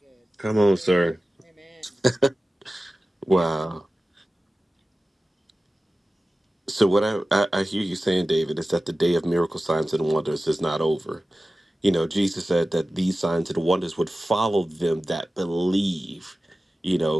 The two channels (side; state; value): both; normal; correlation 0.95